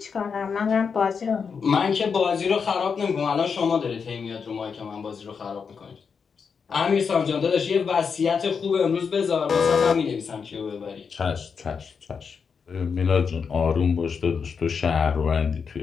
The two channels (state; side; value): quieter; right; 6.0 dB